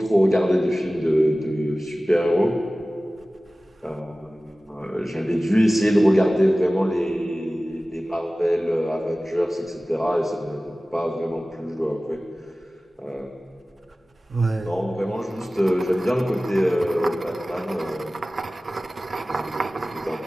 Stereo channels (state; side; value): normal; both; correlation 0.97